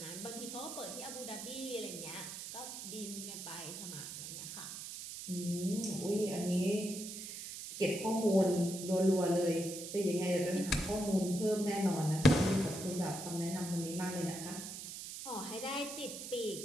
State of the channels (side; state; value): right; noise; hiss, 8 dB below the sound